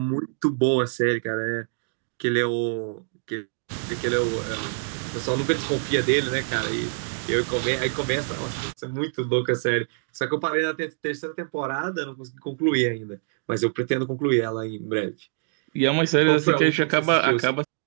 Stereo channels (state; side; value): silent; left; digital silence